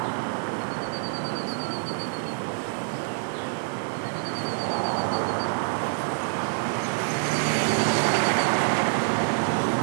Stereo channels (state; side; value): silent; left; digital silence